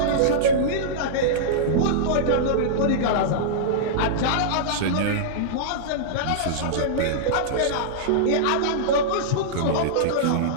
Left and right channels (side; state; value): both; different; correlation -0.03